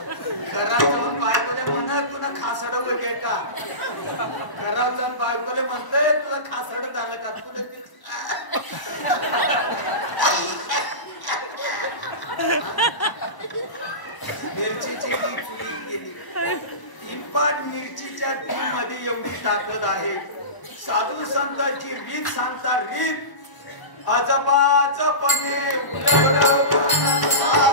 घरात जाऊन बायकोले म्हणत तुला खासड वगैरे का, घरात जाऊन बायकोले म्हणतंय तुला खासड झालं का, तुला मिरचीची बी चुलीत गेली. किंपाट मिरचीच्या बी मध्ये एवढी ताकद आहे. साधू संतांची रीत सांगता, रीत अजबाजपणे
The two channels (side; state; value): right; late; 1.0 ms